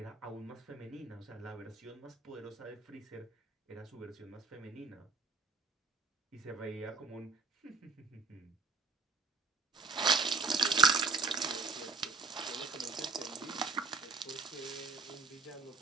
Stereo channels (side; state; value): left; quieter; 4.4 dB